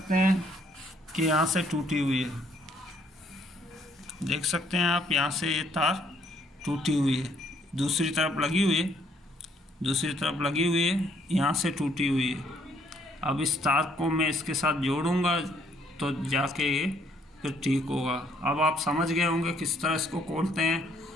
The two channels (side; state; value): both; normal; correlation 0.66